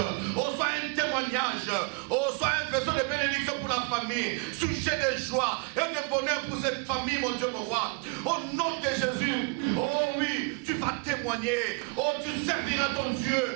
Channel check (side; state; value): left; quieter; 32.9 dB